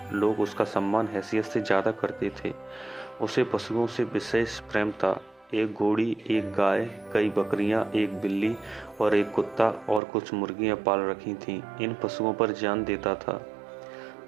लोग उसका सम्मान हैसियत से ज़्यादा करते थे। उसे पशुओं से विशेष प्रेम था। एक घोड़ी, एक गाय, कई बकरियां, एक बिल्ली और एक कुत्ता और कुछ मुर्गियां पाल रखी थीं। इन पशुओं पर जान देता था।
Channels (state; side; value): drops out; left; at 10.0 s